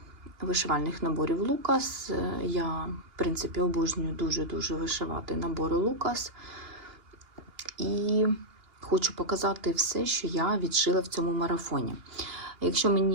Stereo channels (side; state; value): left; late; 2.8 ms